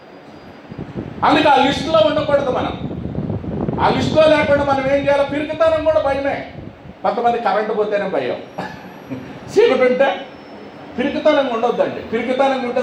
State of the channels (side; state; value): both; identical; correlation 1.00